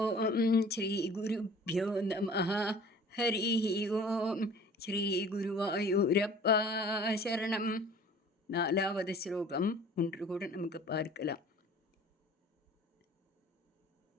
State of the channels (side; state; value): both; normal; correlation 0.47